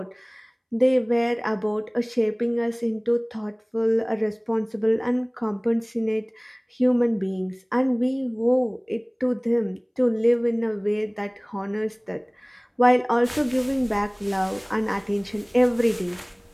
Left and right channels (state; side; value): identical; both; correlation 1.00